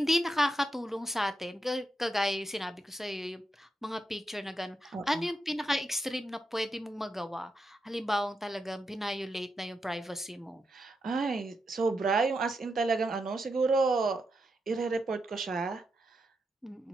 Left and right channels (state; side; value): normal; both; correlation 0.85